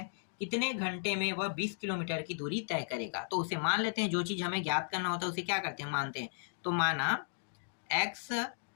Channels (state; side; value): silent; right; digital silence